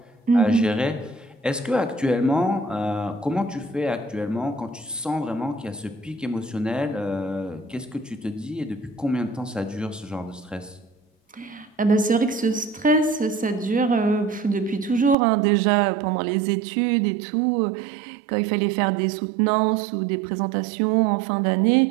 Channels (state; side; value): drops out; left; at 15.2 s